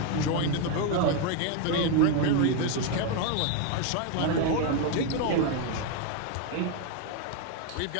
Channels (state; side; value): different; both; correlation 0.01